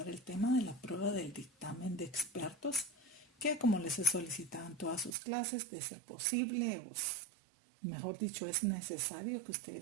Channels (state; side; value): drops out; left; at 5.2 s